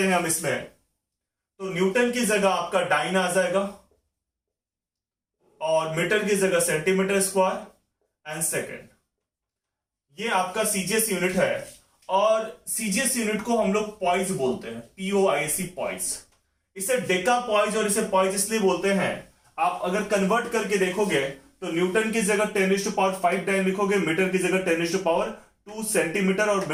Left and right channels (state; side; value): identical; both; correlation 1.00